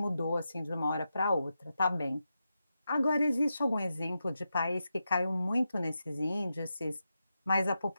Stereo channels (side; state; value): both; inverted; correlation -0.88